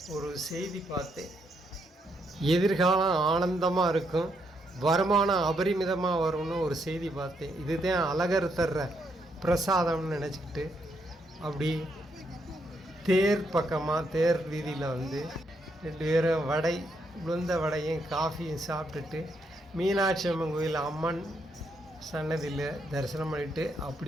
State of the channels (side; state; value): both; normal; correlation 0.77